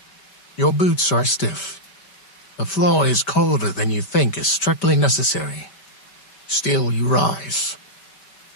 Your boots are stiff. The floor is colder than you think is strictly necessary. Still you rise.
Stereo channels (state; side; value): late; right; 5.1 ms